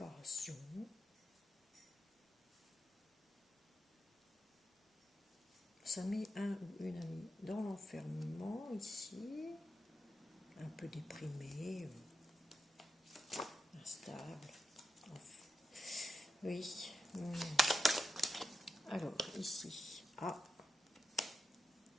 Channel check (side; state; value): both; normal; correlation 0.89